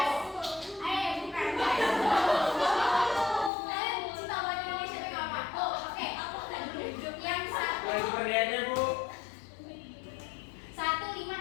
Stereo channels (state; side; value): drops out; right; at 3.5 s